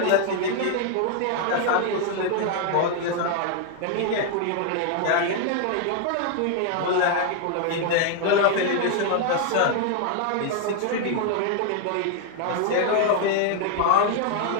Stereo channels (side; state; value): both; different; correlation 0.00